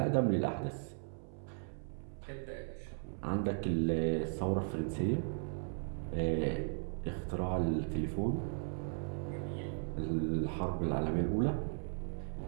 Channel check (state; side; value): silent; left; 53 dB below the other